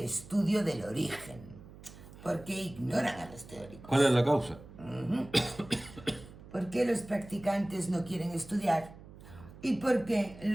estudio del origen. ¿Por qué ignoran a los teóricos? ¿Cuál es la causa? ¿Por qué los practicantes no quieren estudiar? ¿Y por qué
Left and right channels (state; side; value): noise; right; hum, 18 dB below the sound